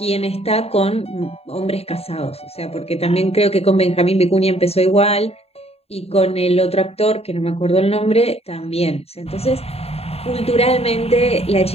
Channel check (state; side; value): late; right; 0.29 ms